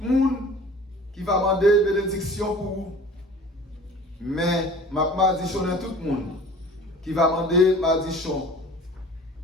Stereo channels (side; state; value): both; normal; correlation 0.44